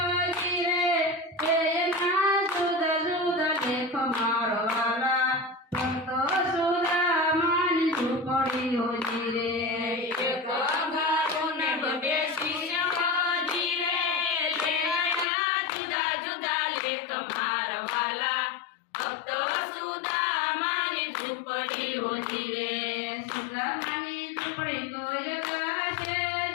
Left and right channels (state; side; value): drops out; right; at 15.2 s